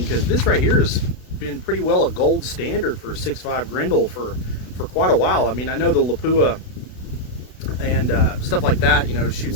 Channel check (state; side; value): late; right; 32 ms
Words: because this right here has been pretty well a gold standard for 6.5 Grendel for quite a while. I mean, I know the Lapua and stuff like that, you know,